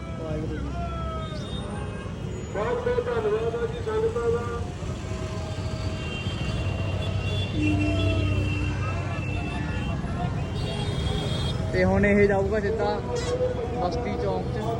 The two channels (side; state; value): both; identical; correlation 1.00